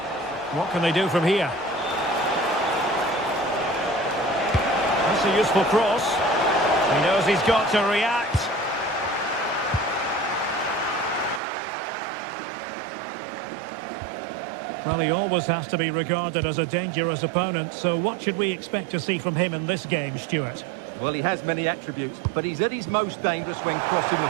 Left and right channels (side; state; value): left; drops out; at 11.4 s